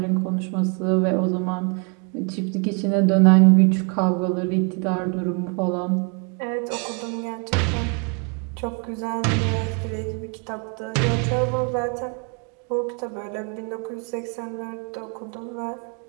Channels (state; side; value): quieter; left; 35.5 dB